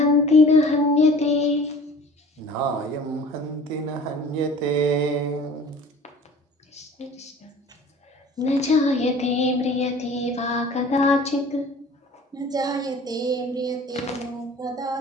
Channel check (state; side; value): normal; both; correlation 0.45